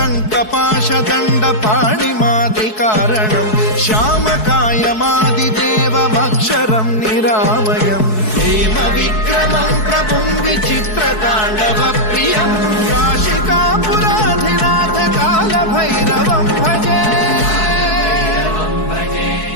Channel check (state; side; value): late; right; 4.7 ms